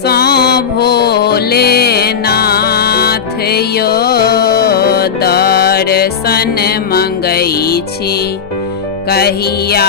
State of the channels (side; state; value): right; quieter; 6.8 dB